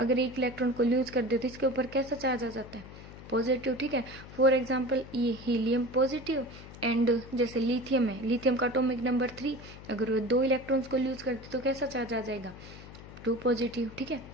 एक इलेक्ट्रॉन को लूज कर दे तो इसके ऊपर कैसा चार्ज आ जाता है? पॉजिटिव, ठीक है। फॉर एग्जाम्पल ये हीलियम पॉजिटिव एंड जैसे लिथियम है, लिथियम का एटॉमिक नंबर 3, अगर वो 2 इलेक्ट्रॉन्स को यूज करते तो कैसा चार्ज आ जाएगा? 2 पॉजिटिव, ठीक है।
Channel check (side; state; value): left; noise; hum, 16 dB below the sound